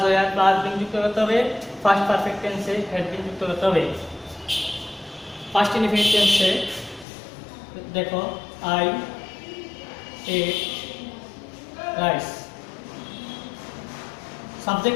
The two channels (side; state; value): right; drops out; at 7.1 s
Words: ওয়ার প্লাস বিন যুক্ত করতে হবে, ফার্স্ট পারফেক্ট টেন্সে হ্যাড বিন যুক্ত করতে হবে। ফার্স্ট ইনডিফিনিট টেন্সে দেখো I ate rice,